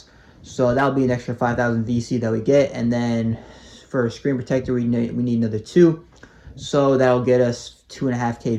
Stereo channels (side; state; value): both; identical; correlation 1.00